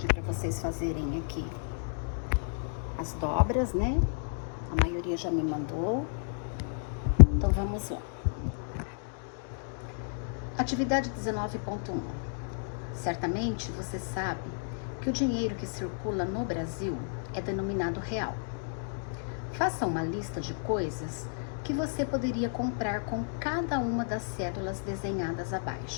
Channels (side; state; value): right; silent; digital silence